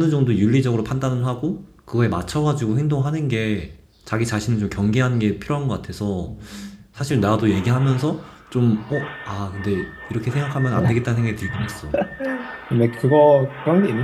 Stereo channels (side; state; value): both; identical; correlation 1.00